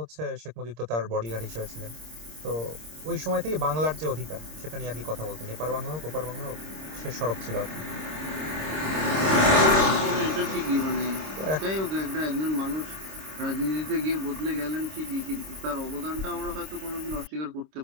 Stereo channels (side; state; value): left; late; 26 ms